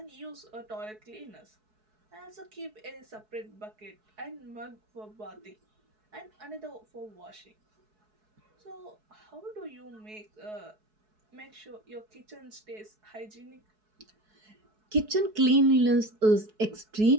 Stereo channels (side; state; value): left; late; 4.7 ms